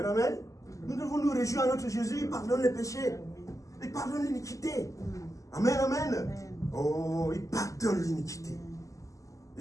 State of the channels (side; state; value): right; late; 0.16 ms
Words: amen. Nous devons nous réjouir à notre Jésus. Il pardonne les péchés. Il pardonne l'iniquité. Amen, amen. Oh, il pardonne l'iniquité.